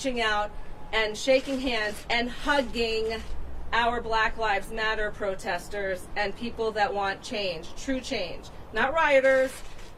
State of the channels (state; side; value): identical; both; correlation 1.00